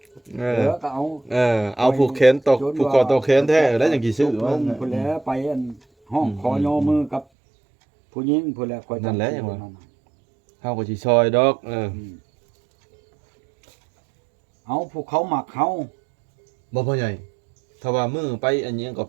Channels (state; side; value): drops out; left; at 7.2 s